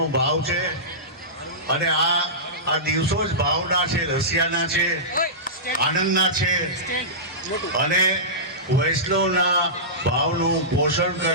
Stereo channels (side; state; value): both; normal; correlation -0.18